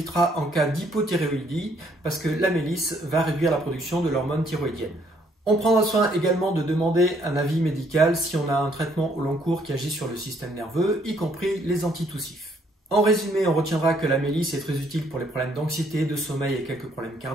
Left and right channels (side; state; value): both; normal; correlation 0.67